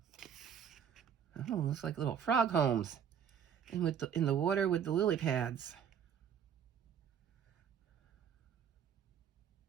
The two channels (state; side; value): quieter; left; 8.2 dB